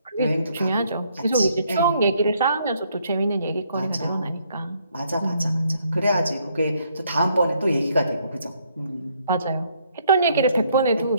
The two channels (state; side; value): inverted; both; correlation -0.69